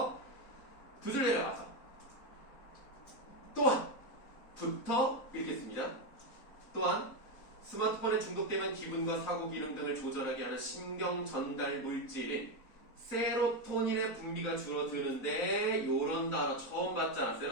두 줄 내려가서 또한 부터 읽겠습니다. 또한 스마트폰에 중독되면 기분과 사고 기능 등을 조절하게 하는 신경 전달 물질인 세로토닌의 분비가 줄어드는데 요런 단어 처음 봤잖아.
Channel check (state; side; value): late; right; 4.0 ms